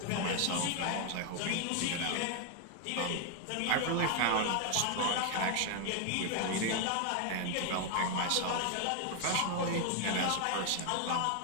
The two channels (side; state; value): both; different; correlation 0.01